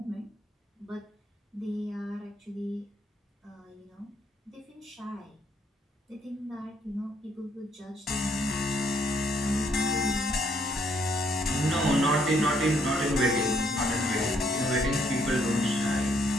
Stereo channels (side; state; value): both; normal; correlation 0.69